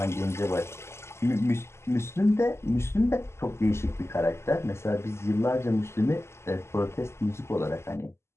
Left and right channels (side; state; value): right; late; 0.13 ms